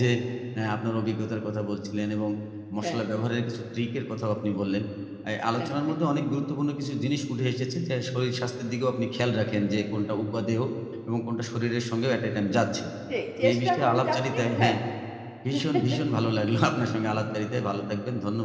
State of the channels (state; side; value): identical; both; correlation 1.00